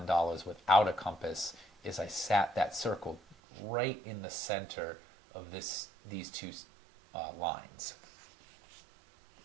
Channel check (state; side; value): drops out; left; at 3.4 s